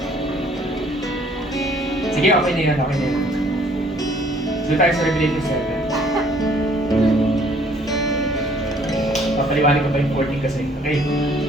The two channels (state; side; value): normal; both; correlation 0.59